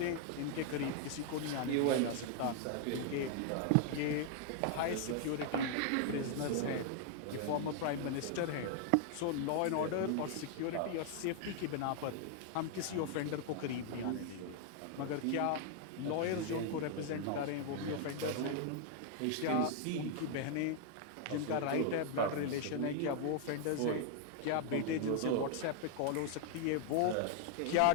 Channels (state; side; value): different; both; correlation 0.00